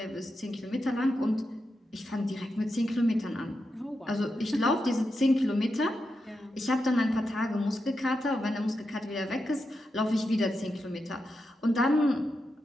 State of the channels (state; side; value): normal; both; correlation 0.87